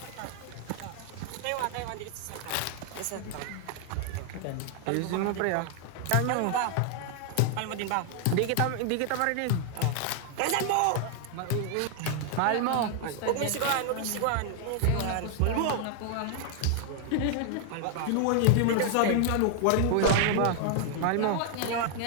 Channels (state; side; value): different; both; correlation 0.00